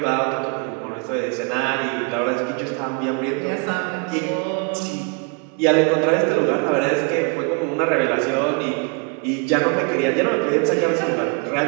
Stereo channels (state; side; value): quieter; left; 33.1 dB